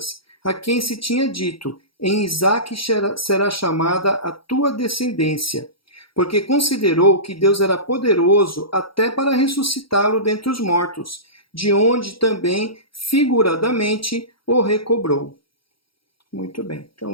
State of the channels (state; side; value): late; right; 0.75 ms